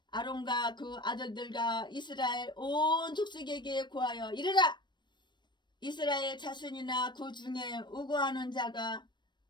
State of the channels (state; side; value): late; right; 0.22 ms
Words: 아론과 그 아들들과 이스라엘 온 족속에게 고하여 이르라. 이스라엘 자손이나 그 중에 우고하는 자가